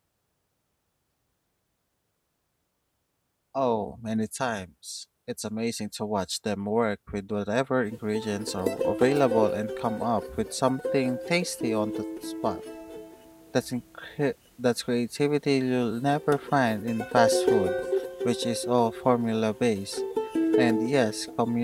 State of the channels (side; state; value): both; identical; correlation 1.00